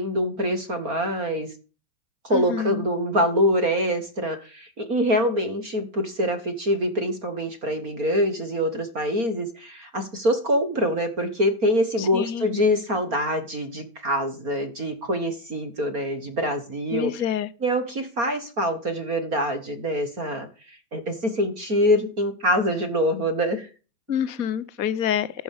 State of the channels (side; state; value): left; late; 4.3 ms